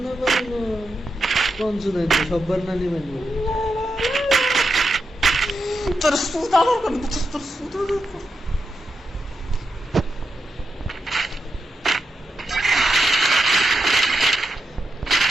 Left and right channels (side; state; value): both; normal; correlation 0.87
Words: কোন শুনে সববার না নিবেন তোর সুদা দরকার তোর সুদা দরকার